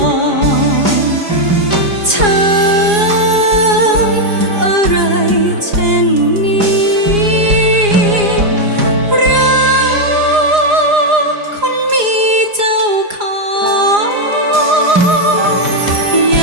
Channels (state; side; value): late; left; 4.8 ms